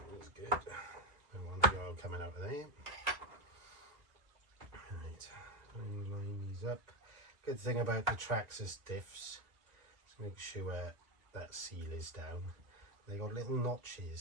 good. Don't want the oil coming out of there. Right, line these up. Good thing about the Traxxas diffs, let's make sure that seal is down. They got little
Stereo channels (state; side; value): late; left; 2.0 ms